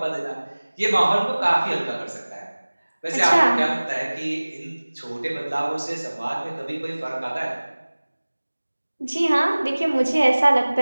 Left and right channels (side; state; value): both; inverted; correlation -1.00